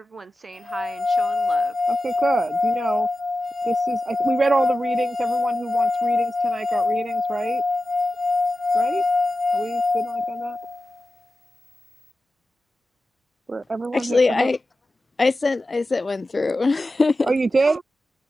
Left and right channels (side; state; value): both; normal; correlation 0.93